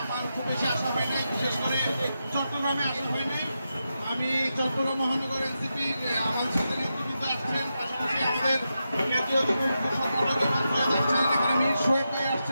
আমার খুব বেশি আশা হয় নাই, বিশেষ করে চট্টগ্রামে আসা হয় নাই। আমি চট্টগ্রাম মহানগর এনসিপির আমাদের সাথে নেতৃবৃন্দ আসছেন, পাশাপাশি আমাদের কেন্দ্রীয় যুব সংগঠকের মন্ত্রী আসছেন, এখানে মীর সোহেব ভাই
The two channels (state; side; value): inverted; both; correlation -0.88